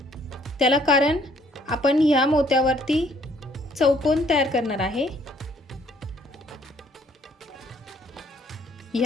त्याला कारण आपण ह्या मोत्यावरती चौकोन तयार करणार आहे.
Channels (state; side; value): normal; both; correlation 0.63